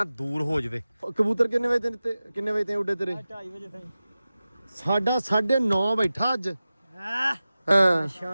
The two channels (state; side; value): inverted; both; correlation -0.95